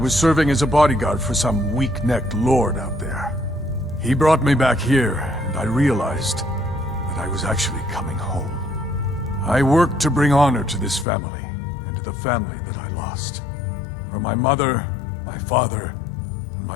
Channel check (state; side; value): drops out; right; at 11.1 s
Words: serving as a bodyguard for some weak-necked lord out there. He brought me back here, and I realized that I was actually coming home. I worked to bring honor to this family, and to the family that I lost. For my mother, my father, and